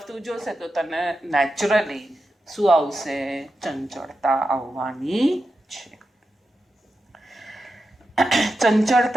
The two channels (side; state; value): both; normal; correlation 0.89